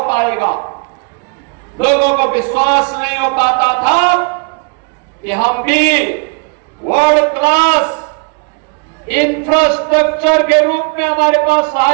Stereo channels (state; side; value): quieter; left; 35.9 dB